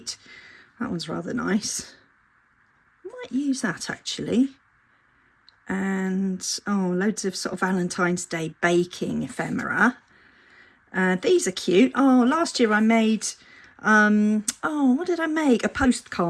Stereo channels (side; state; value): both; identical; correlation 1.00